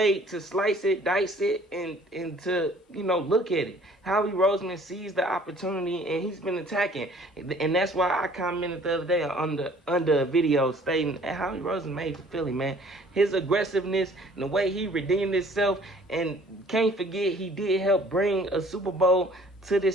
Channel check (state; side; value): normal; both; correlation 0.54